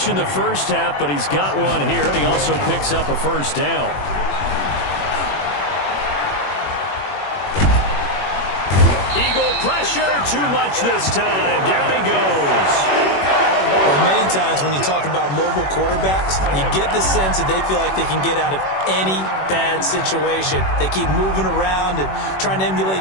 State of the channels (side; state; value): right; late; 21 ms